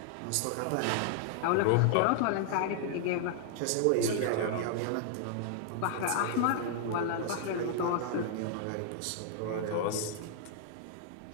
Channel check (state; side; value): different; both; correlation 0.00